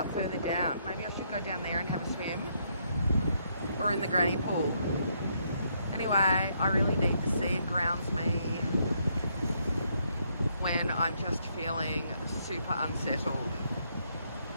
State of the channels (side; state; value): both; inverted; correlation -0.73